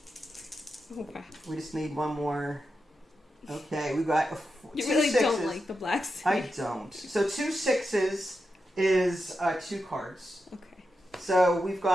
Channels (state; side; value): normal; both; correlation 0.88